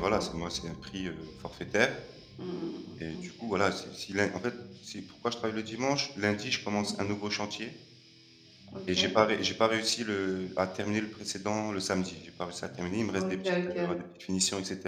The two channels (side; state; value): both; identical; correlation 1.00